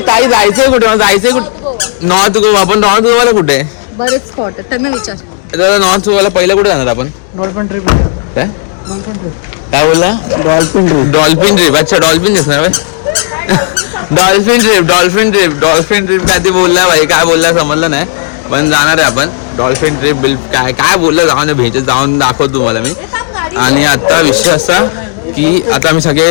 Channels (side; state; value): right; silent; digital silence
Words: ताई जायचंय कुठे मला जायचंय कुठे. नॉर्थ गोवा. आपण नॉर्थ गोवाला कुठे बरेच स्पॉट आहेत त्यांना विचार. नॉर्थ गोवाला पहिलं कुठे जाणार आपण. काय बोलला डॉल्फिन ट्रिप. अच्छा डॉल्फिन दिसणार डॉल्फिन ट्रिप काय ते बोलला भाई काय बोलला समजलं नाही पण जाणार आहे आपण डॉल्फिन ट्रिप काय काय बोललं जाऊन भेट जाऊन दाखवतो तुम्हाला मी. आणि आता विषय असा की आता आम्ही